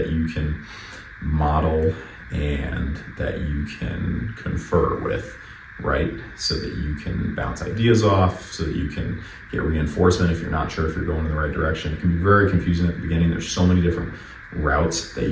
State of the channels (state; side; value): identical; both; correlation 1.00